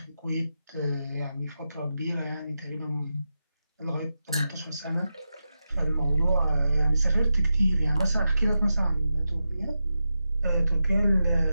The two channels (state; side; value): inverted; both; correlation -0.89